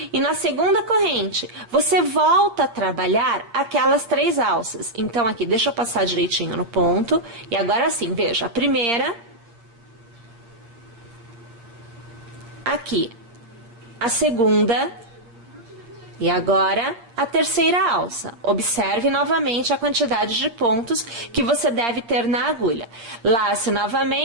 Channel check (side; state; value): left; late; 8.6 ms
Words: e na segunda corrente você volta a trabalhar aquelas 3 alças. Então aqui, deixa eu passar direitinho no ponto. E agora sim, veja, a primeira, aqui, a segunda e agora a terceira alça. Observe novamente a quantidade de pontos que você deve ter na agulha. Lace